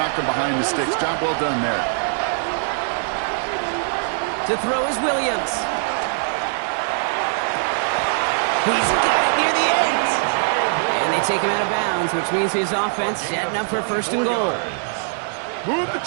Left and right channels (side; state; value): left; silent; digital silence